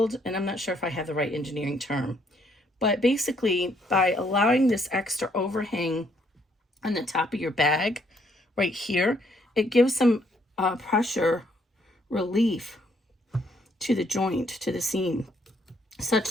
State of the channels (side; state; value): both; normal; correlation 0.69